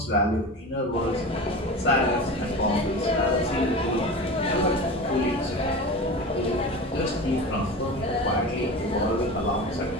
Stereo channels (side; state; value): both; normal; correlation 0.31